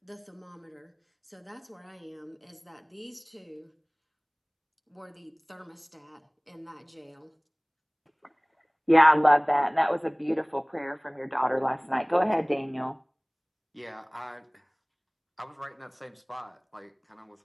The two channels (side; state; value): both; identical; correlation 1.00